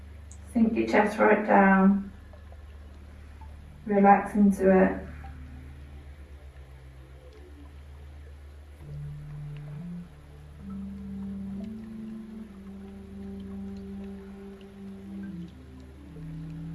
Sink your chest right down. Relax into it.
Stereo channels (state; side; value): identical; both; correlation 1.00